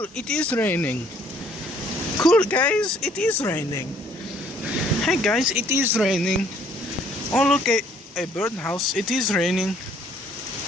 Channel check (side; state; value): both; normal; correlation 0.62